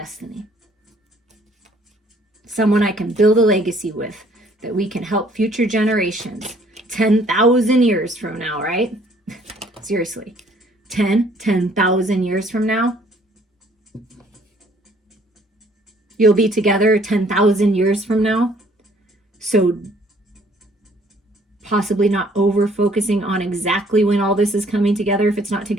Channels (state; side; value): normal; both; correlation 0.60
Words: Someone I can build a legacy with, that we can help future generations 10,000 years from now, right? Seriously, 10,000 years from now, you'll be together 10,000 years from now. So possibly not over focusing on exactly when all this is coming together, if it's not